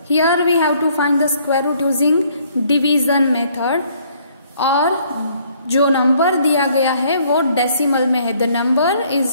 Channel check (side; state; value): both; inverted; correlation -0.63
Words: Here we have to find the square root using division method. और जो number दिया गया है वो decimal में है. The number